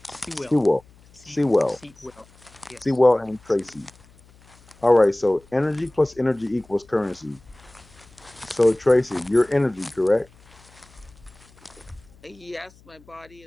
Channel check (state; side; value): noise; left; hum, 27 dB below the sound